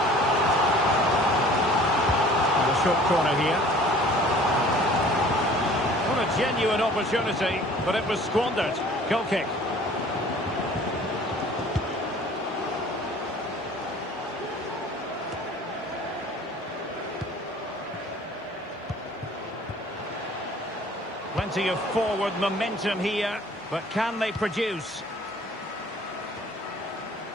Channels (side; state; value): both; normal; correlation 0.50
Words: And a short corner here. What a genuine opportunity, but it was squandered. Goal kick. Plenty of forward momentum here, but can they produce?